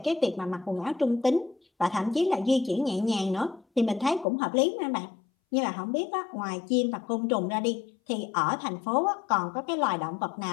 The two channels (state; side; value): drops out; right; at 4.2 s